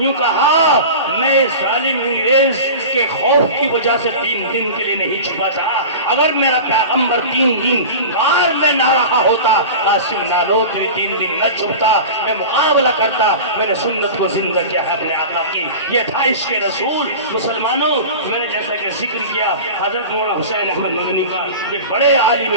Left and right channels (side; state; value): both; inverted; correlation -0.32